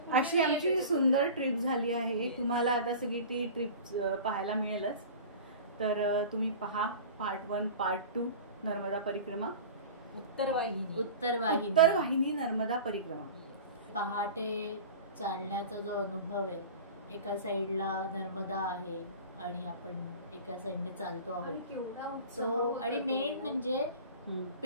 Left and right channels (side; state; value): both; inverted; correlation -0.36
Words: अशी आमची सुंदर ट्रिप झाली आहे. तुम्हाला आता सगळी ती ट्रिप पाहायला मिळेलच. तर तुम्ही पहा पार्ट 1 पार्ट 2 नर्मदा परिक्रमा. उत्तरवाहिनी नर्मदा परिक्रमा. पहाटे चालण्याचा जो अनुभव आहे, एका साईडला नर्मदा आहे आणि आपण एका साईडने चालतो आहोत तो. आणि मेन म्हणजे